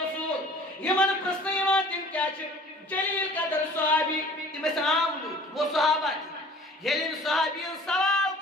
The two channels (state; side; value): normal; both; correlation 0.49